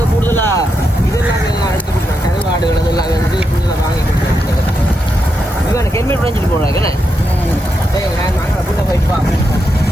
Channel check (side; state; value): both; normal; correlation 0.84